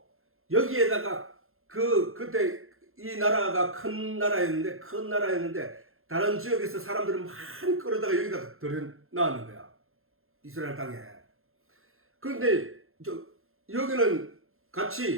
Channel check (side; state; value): left; late; 0.61 ms